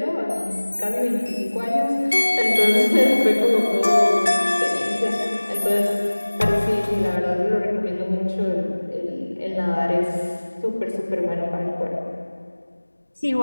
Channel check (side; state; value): both; inverted; correlation -1.00